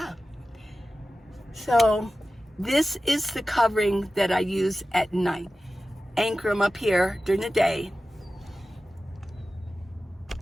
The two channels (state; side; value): normal; both; correlation 0.95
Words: So this is the covering that I use at night. Anchor them up here during the day.